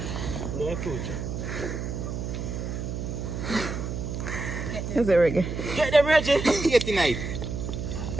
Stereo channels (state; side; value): noise; right; hum, 4 dB below the sound